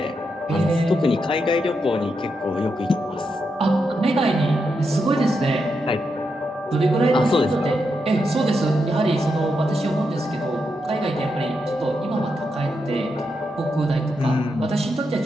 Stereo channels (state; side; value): normal; both; correlation 0.84